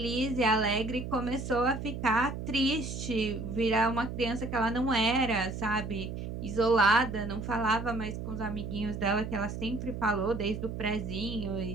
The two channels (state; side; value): noise; right; hum, 6 dB below the sound